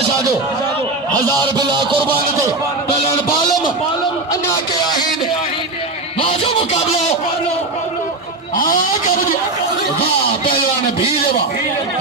जो 1000 बिला कुर्बान ते पहलवान बालम अञा के आहिन वाह जो मुकाबलो वाह पहलवान भील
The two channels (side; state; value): left; quieter; 3.1 dB